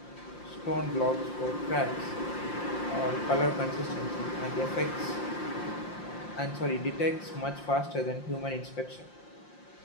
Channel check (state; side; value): late; right; 5.7 ms